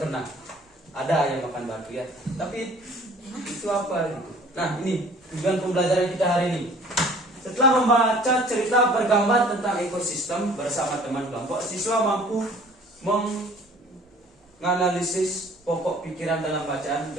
pernah? Ada ayam makan batu ya. Tapi itu apa gitu? Nah, ini tujuan pembelajaran kita hari ini. Setelah membaca cerita bergambar tentang ekosistem bersama teman kelompok, siswa mampu menganalisis pokok pikiran dalam bacaan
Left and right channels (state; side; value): normal; both; correlation 0.51